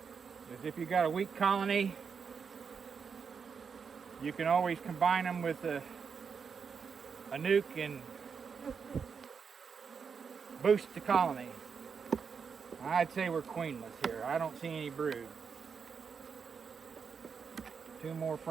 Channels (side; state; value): left; quieter; 6.1 dB